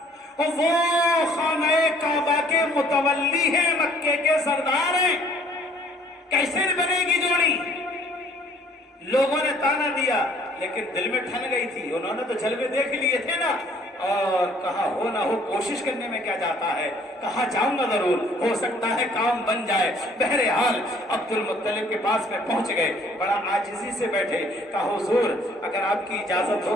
اور وہ خانہ کعبہ کے متولی ہیں، مکے کے سردار ہیں، کیسے بنے گی جوڑی؟ لوگوں نے تانا دیا، لیکن دل میں ٹھن گئی تھی، انہوں نے تو جلوے دیکھ لیے تھے نا، اور کہا ہو نہ ہو کوشش کرنے میں کیا جاتا ہے، کہا جاؤں گا ضرور، ہو سکتا ہے کام بن جائے۔ بہرحال عبد المطلب کے پاس میں پہنچ گئے، بڑا عاجزی سے بیٹھے، کہا حضور اگر آپ کی اجازت ہو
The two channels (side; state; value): both; normal; correlation 0.59